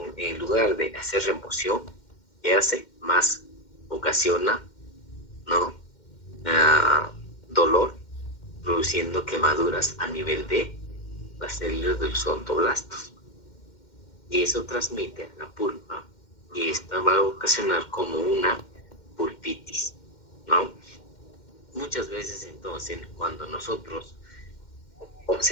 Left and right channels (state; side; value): late; right; 2.1 ms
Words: en lugar de hacer remoción, ¿qué hace? Más ocasiona, ¿no?, dolor, produciendo quemaduras a nivel de las células de los odontoblastos. Y eso transmite a la pulpa y esta va a ocasionar como una pulpitis, ¿no? Muchas veces entonces cuando nosotros